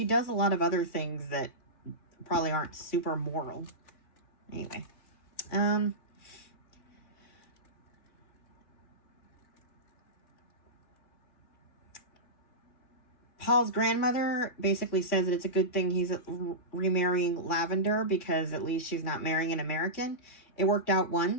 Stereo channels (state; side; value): late; right; 3.1 ms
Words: does a lot of other things that probably aren't super moral. Anyway. Paul's grandmother basically says that it's a good thing he's remarrying Lavender because at least she's not marrying an American. It worked out